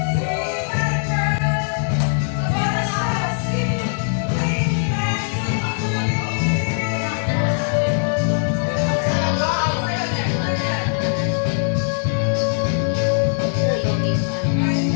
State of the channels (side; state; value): right; silent; digital silence